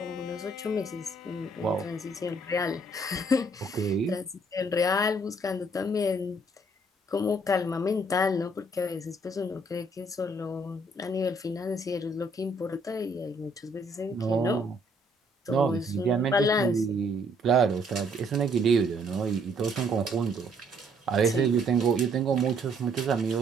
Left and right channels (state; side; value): normal; both; correlation 0.66